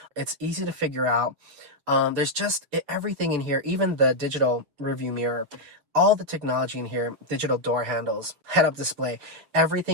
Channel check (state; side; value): late; left; 7.1 ms